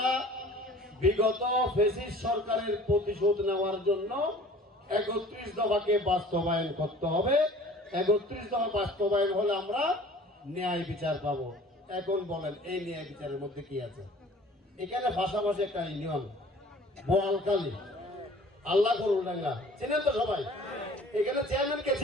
বিগত ফেসিস্ট সরকারের প্রতিশোধ নেওয়ার জন্য ৩১ দফাকে বাস্তবায়ন করতে হবে। ৩১ দফা বাস্তবায়ন হলে আমরা ন্যায় বিচার পাবো। এখন বলেন এই ন্যায় বিচারের মধ্যে কি আছে? এখানে ভাষাভাষী একটা ইউনিয়ন বোয়ালকালী আল্লাহ করুল্লাঙ্গা চিনেন তো সবাই? এখানে চেয়ারম্যান কে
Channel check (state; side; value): normal; both; correlation 0.48